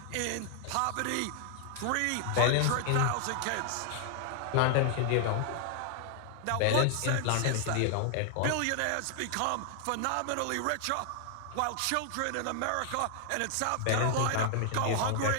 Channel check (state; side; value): different; both; correlation 0.00